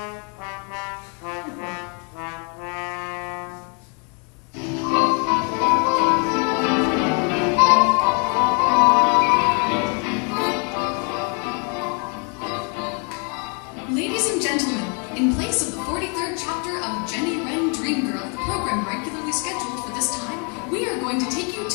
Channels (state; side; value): quieter; right; 36.7 dB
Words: Ladies and gentlemen, in place of the 43rd chapter of Jenny Wren Dream Girl, the program regularly scheduled for this time, we are going to take you